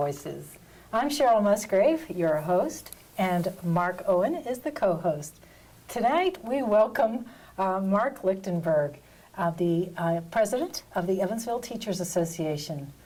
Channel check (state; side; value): identical; both; correlation 1.00